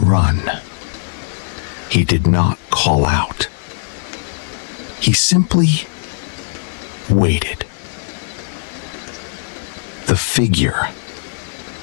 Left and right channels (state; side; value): silent; right; digital silence